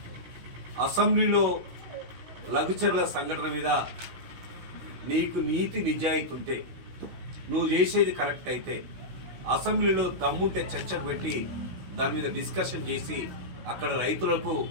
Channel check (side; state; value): left; late; 16 ms